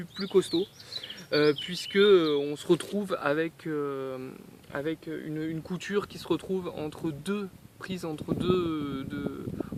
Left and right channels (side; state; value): both; identical; correlation 1.00